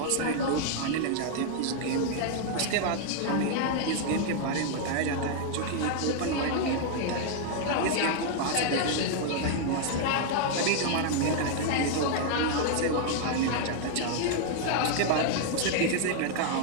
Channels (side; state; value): both; different; correlation 0.00